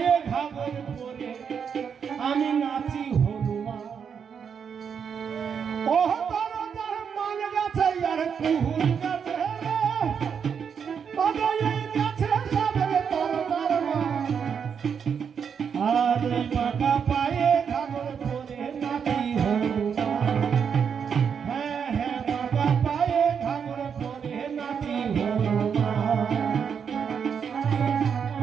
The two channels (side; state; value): left; quieter; 7.0 dB